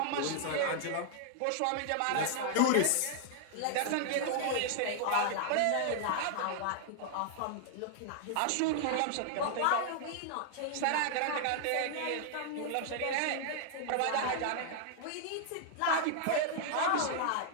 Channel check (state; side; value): different; both; correlation -0.01